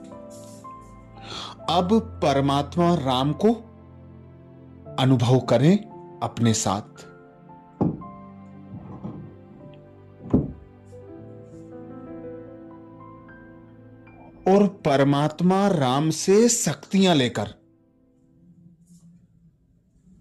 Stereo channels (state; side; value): identical; both; correlation 1.00